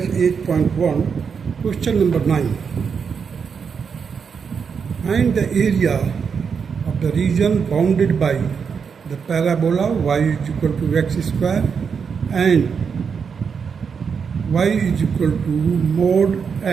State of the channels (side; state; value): left; quieter; 6.2 dB